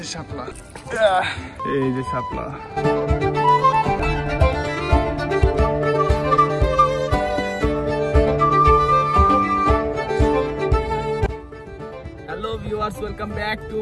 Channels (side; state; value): both; identical; correlation 1.00